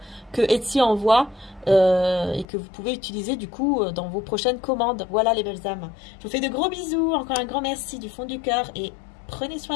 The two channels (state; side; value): drops out; right; at 2.5 s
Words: que Etsy envoie et que vous pouvez utiliser du coup dans vos prochaines commandes. Voilà les belles âmes. Je vous fais de gros bisous, encore un grand merci du fond du cœur et prenez